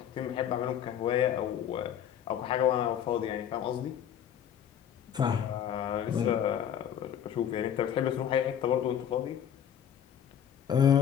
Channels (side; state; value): right; quieter; 9.3 dB